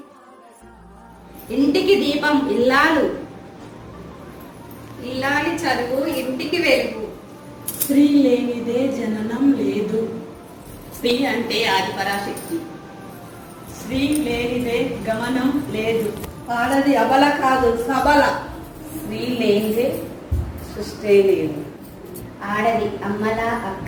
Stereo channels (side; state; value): both; identical; correlation 1.00